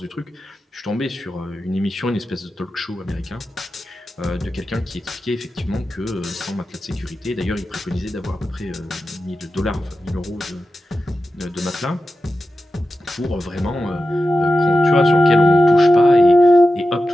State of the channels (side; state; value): both; normal; correlation 0.92